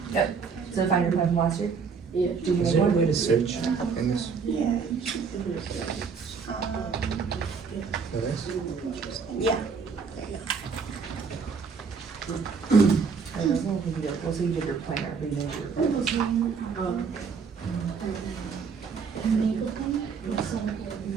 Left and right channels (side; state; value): left; quieter; 5.6 dB